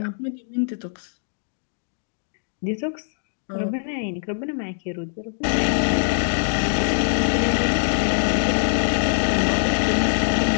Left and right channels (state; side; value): silent; right; digital silence